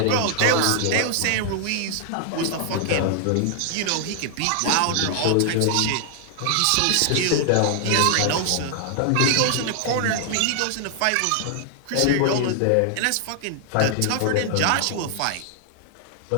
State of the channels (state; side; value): different; both; correlation 0.00